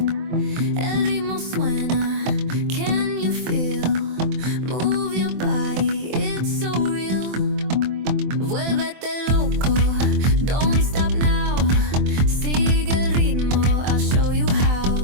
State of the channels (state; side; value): late; left; 24 ms